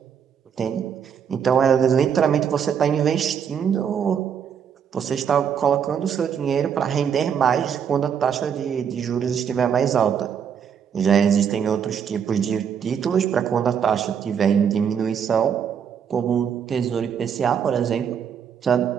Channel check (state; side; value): quieter; left; 7.7 dB